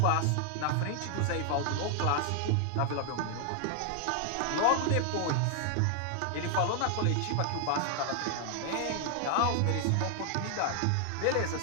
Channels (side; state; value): both; different; correlation 0.00